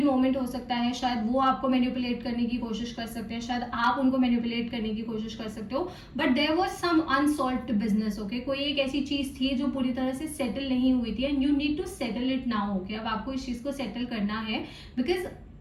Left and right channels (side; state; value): both; identical; correlation 1.00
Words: मोमेंट हो सकता है। शायद वो आपको मैनिपुलेट करने की कोशिश कर सकते हैं, शायद आप उनको मैनिपुलेट करने की कोशिश कर सकते हो, but there was some unsolved business okay. कोई एक ऐसी चीज थी जो पूरी तरह से सेटल नहीं हुई थी and you need to settle it now okay. अब आपको इस चीज को सेटल करना है बिकॉज